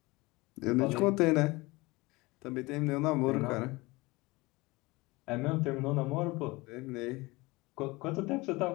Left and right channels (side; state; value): right; quieter; 22.8 dB